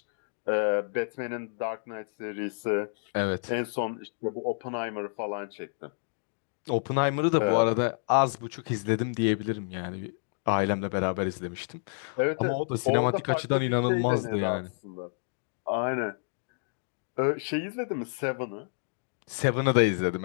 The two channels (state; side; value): silent; right; digital silence